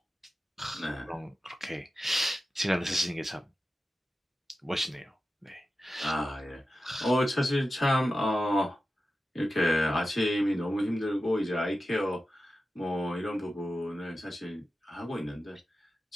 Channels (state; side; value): normal; both; correlation 0.93